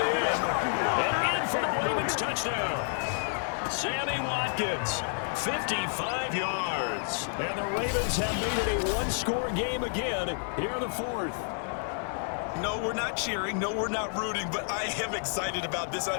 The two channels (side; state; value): right; silent; 56 dB below the other